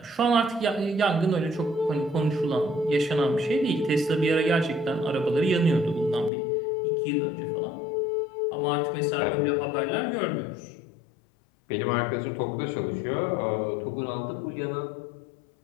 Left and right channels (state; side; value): drops out; right; at 6.3 s